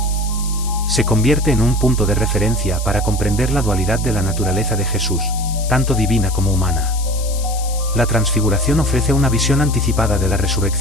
Se convierte en un punto de referencia para comprender la dualidad de la naturaleza de Jesús, tanto divina como humana. La transfiguración ofrece una visión anticipada de la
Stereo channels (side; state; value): left; noise; hiss, 12 dB below the sound